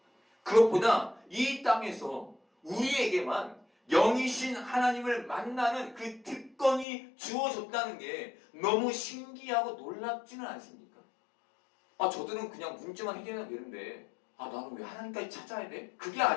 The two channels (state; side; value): drops out; right; at 6.9 s